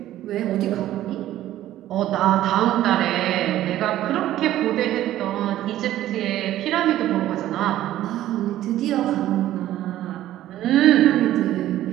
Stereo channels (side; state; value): left; quieter; 13.5 dB